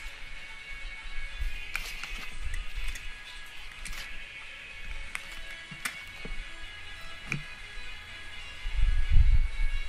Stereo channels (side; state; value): both; identical; correlation 1.00